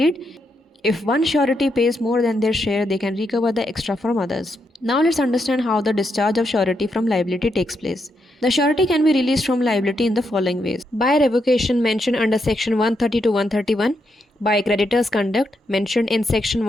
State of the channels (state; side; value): normal; both; correlation 0.81